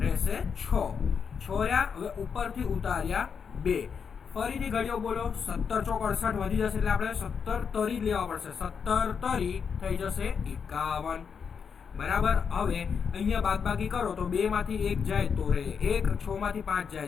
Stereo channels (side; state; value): right; quieter; 6.5 dB